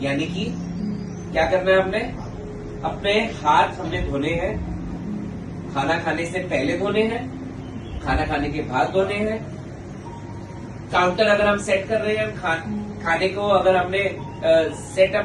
यानी कि क्या करना है, हमने अपने हाथ धोने हैं। खाना खाने से पहले धोने हैं, खाना खाने के बाद धोने हैं। काउंटर अगर हम सेट कर रहे हैं, खाने को अगर हमने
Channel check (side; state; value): both; identical; correlation 1.00